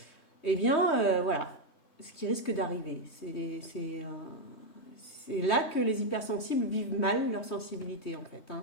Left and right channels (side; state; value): right; late; 3.2 ms